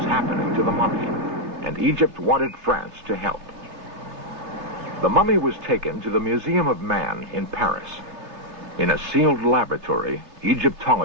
happening to the mummy, and Egypt wanted France to help. The mummy was taken to the Museum of Man in Paris. In a sealed laboratory,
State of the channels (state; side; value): late; left; 3.1 ms